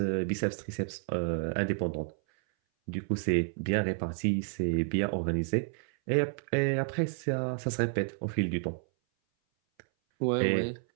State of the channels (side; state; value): left; silent; 57 dB below the other